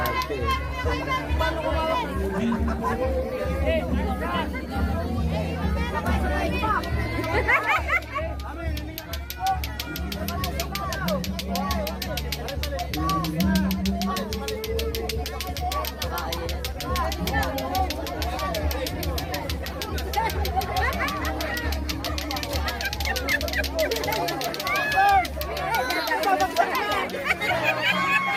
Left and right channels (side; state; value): both; identical; correlation 1.00